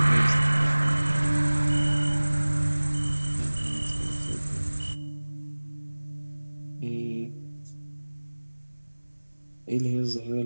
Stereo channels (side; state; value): both; inverted; correlation -1.00